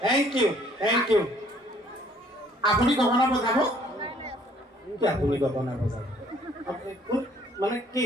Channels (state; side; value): normal; both; correlation 0.61